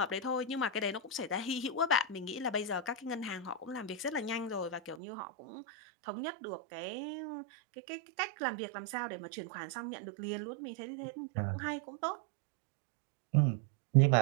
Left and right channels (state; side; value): drops out; left; at 5.0 s